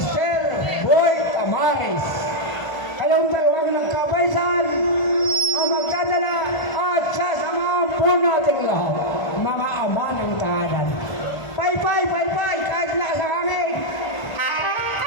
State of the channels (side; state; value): right; late; 1.5 ms